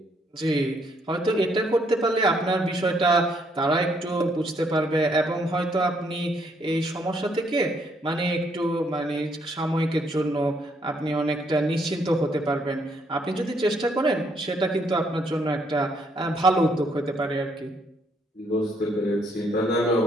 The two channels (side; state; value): both; normal; correlation 0.70